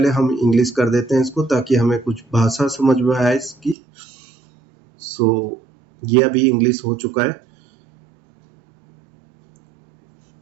हम इंग्लिश कर देते हैं इसको ताकि हमें कुछ भाषा समझ में आए इसकी। सो ये अभी इंग्लिश हो चुका है।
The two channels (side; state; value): left; drops out; at 3.8 s